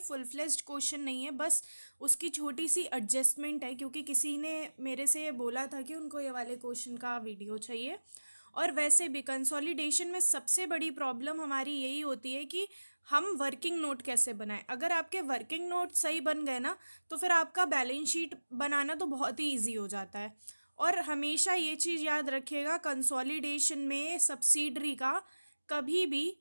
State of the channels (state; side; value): inverted; both; correlation -1.00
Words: फ्लेज्ड क्वेश्चन नहीं है, बस उसकी छोटी सी एडजस्टमेंट है क्योंकि किसी ने मेरे से ये बोला था कि उनको ये वाले क्वेश्चन का वीडियो चाहिए। और वैसे भी कंसोलिडेशन में सबसे बड़ी प्रॉब्लम हमारी यही होती है कि हम वर्किंग नोट कैसे बनाएं। अगर आपके वर्किंग नोट सही बन गए ना तो फिर आपका बैलेंस शीट बनाना तो बहुत ही ईजी हो जाता है। और हमेशा ये चीज़ याद रखिएगा, कंसोलिडेशन में सब्सिडरी का कभी भी